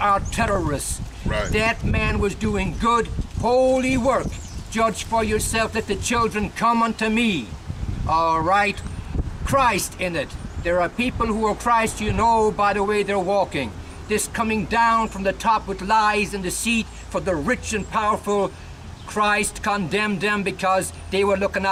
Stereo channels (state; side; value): identical; both; correlation 1.00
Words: terrorists. Right. That man was doing good, holy work. Judge for yourself, let the children come unto me. All right? Christ in it. There are people who are Christ, you know, by the way they're walking. This coming down from the top with lies and deceit for the rich and powerful. Christ condemned them because they were looking